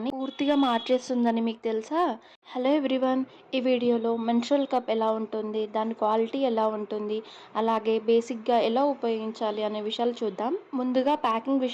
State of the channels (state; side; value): identical; both; correlation 1.00